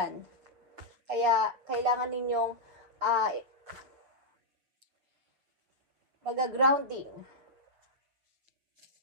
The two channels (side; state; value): left; late; 7.5 ms